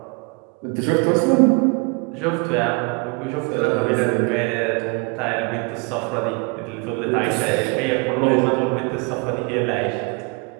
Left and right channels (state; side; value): quieter; left; 31.7 dB